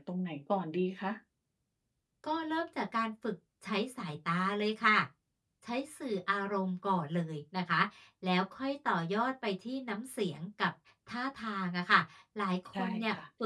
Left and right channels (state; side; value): identical; both; correlation 1.00